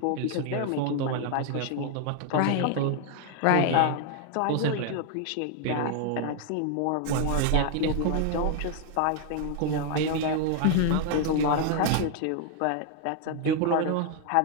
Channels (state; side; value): different; both; correlation 0.00